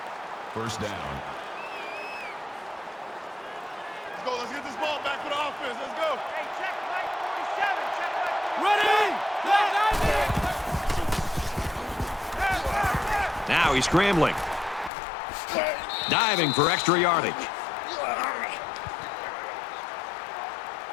First down. Let's go. Let's get this ball back for the offense. Let's go. Hey, check Mike 47. Check Mike 47. Ready? Now he's scrambling. Diving for extra yardage. Hey,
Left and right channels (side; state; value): right; drops out; at 14.9 s